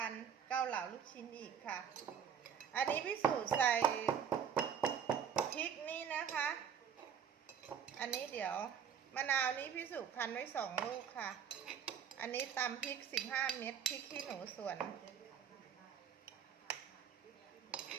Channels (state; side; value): quieter; left; 8.0 dB